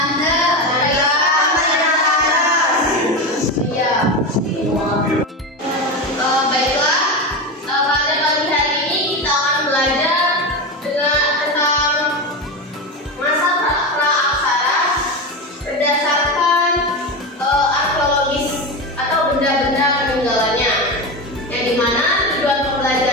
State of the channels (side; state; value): both; normal; correlation 0.19